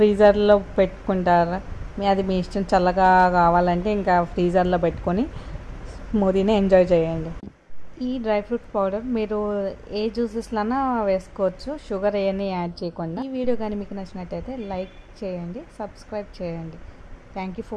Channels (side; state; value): both; identical; correlation 1.00